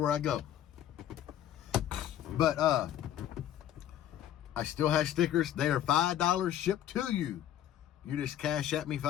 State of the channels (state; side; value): quieter; right; 11.2 dB